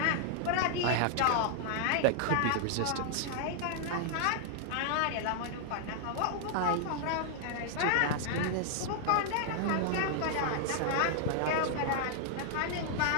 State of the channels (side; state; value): both; different; correlation -0.01